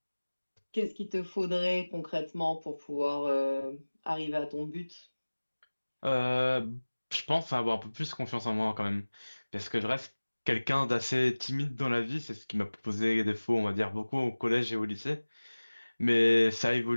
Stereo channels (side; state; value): both; inverted; correlation -1.00